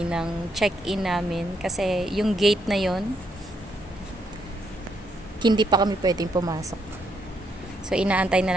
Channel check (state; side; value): normal; both; correlation 0.76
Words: ng check-in namin kasi yung gate na yon hindi pa kami pwedeng pumasok. So, inaantay